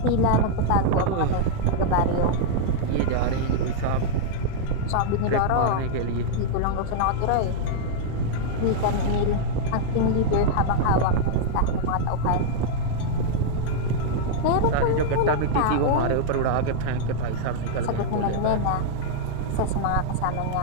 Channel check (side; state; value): both; different; correlation -0.01